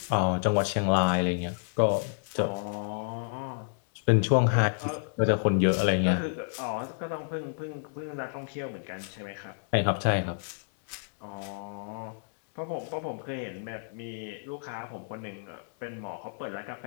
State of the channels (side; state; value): right; silent; 58 dB below the other